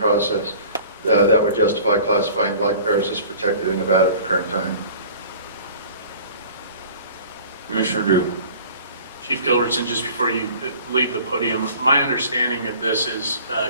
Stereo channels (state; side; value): inverted; both; correlation -0.46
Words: that would justify classifying black bears as protected in Nevada at the current time. Commissioner Drew. Chief Gilbertson, just before you leave the podium, my understanding of this is